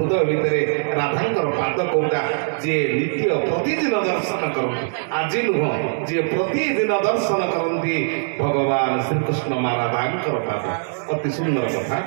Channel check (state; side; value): silent; left; digital silence